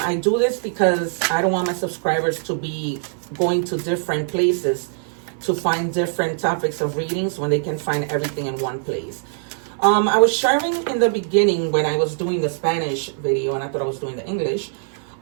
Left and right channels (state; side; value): silent; left; 57 dB below the other